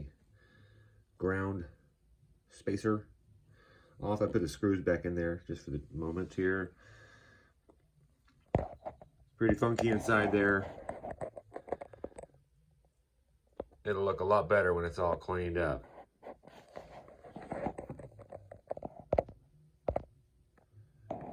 ground spacer off. I put the screws back in there just for the moment here. Pretty funky inside there. It'll look a lot better when it's all cleaned up.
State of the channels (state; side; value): identical; both; correlation 1.00